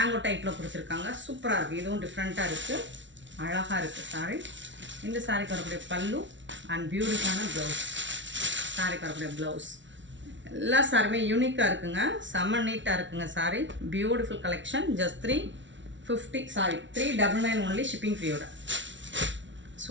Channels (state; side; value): late; left; 0.55 ms